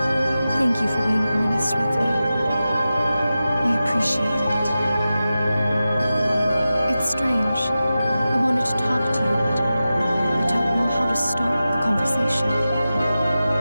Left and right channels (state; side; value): inverted; both; correlation -0.93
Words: Thank you for being honest with me. I appreciate it. It's strange. I wanted to talk to you, but I don't know how to start the conversation.